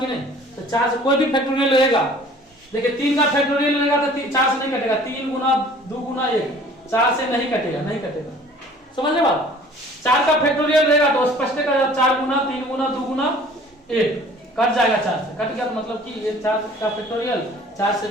की नहीं? तो 4 से कोई भी फैक्टोरियल रहेगा, देखिए 3 का फैक्टोरियल रहेगा तो 4 से नहीं कटेगा, 3 गुना 2 गुना 1 4 से नहीं कटेगा, नहीं कटेगा। समझ रहे बात? 4 का फैक्टोरियल रहेगा तो स्पष्ट है 4 गुना 3 गुना 2 गुना 1 कट जाएगा, 4 से कट गया तो मतलब कि ये 4 का फैक्टोरियल 4 से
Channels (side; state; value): both; normal; correlation 0.50